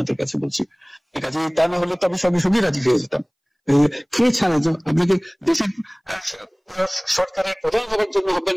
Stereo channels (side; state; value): both; identical; correlation 1.00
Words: কাছে বলছি। এই কাজে তা না হলে তো আমি সঙ্গে সঙ্গে রাজি হয়ে যেতাম। কে ছাড়া আপনাকে দেশের সরকারের প্রধান হওয়ার জন্য আহ্বান